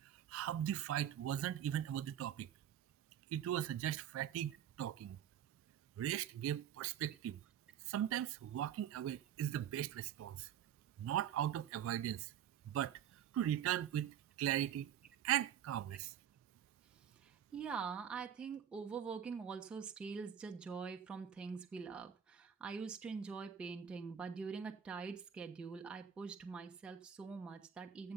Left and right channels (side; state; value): left; quieter; 9.7 dB